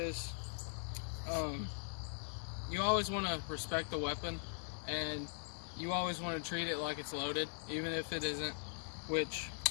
you always want to respect the weapon, and you always want to treat it like it's loaded, even if it isn't, which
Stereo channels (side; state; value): right; silent; digital silence